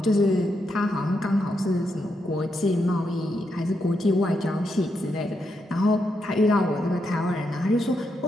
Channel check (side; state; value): both; normal; correlation 0.82